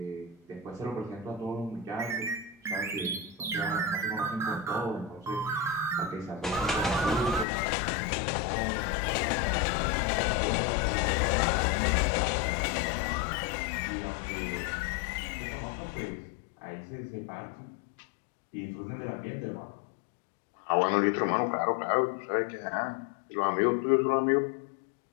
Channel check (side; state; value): right; drops out; at 7.5 s